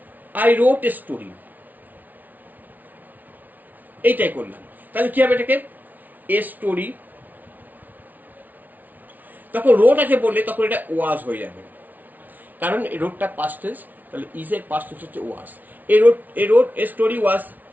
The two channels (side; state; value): left; late; 0.079 ms